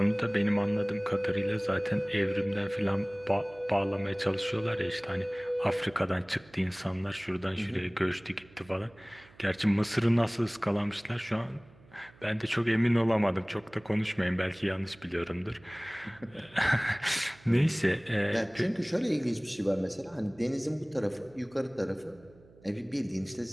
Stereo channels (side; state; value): right; noise; hum, 26 dB below the sound